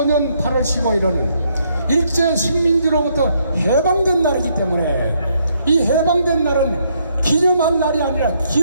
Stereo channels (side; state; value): both; inverted; correlation -0.73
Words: 8월 15일은 일제 식민지로부터 해방된 날이기 때문에 이 해방된 날은 기념할 날이 아니라